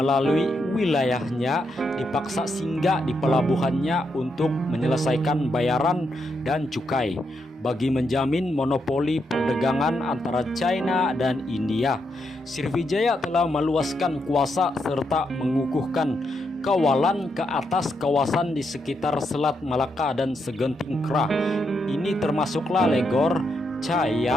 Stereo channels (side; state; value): both; normal; correlation 0.81